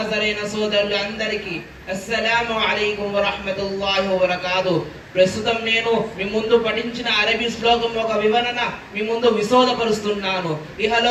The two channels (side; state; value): both; identical; correlation 1.00